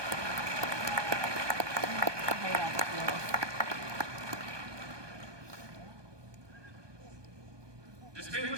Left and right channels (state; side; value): late; left; 1.2 ms